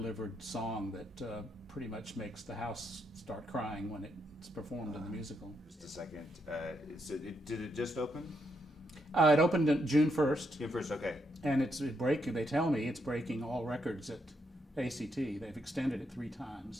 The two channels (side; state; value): both; normal; correlation 0.79